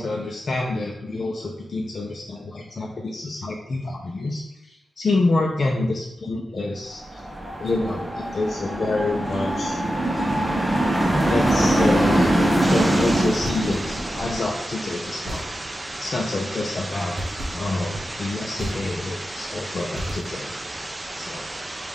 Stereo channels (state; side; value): normal; both; correlation 0.91